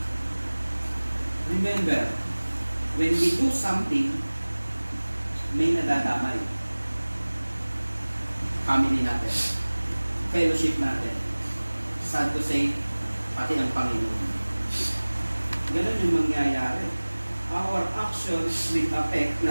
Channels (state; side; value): inverted; both; correlation -1.00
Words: Remember, when we do something, may nadadamay. Family natin, fellowship natin, sad to say, pati ang Panginoon. Ganun yung mangyayari. Our actions will affect